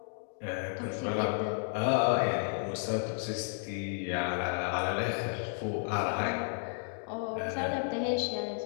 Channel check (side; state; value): right; silent; 56 dB below the other